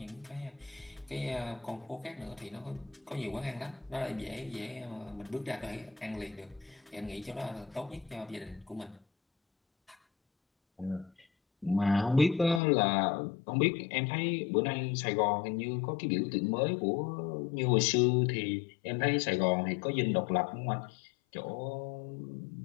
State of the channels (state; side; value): drops out; right; at 12.6 s